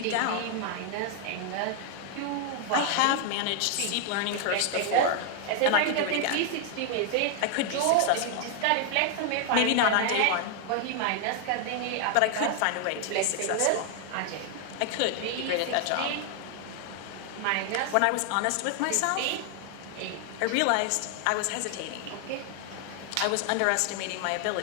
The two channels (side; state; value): both; different; correlation 0.00